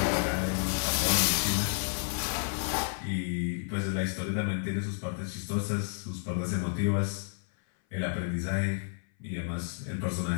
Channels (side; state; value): right; silent; 57 dB below the other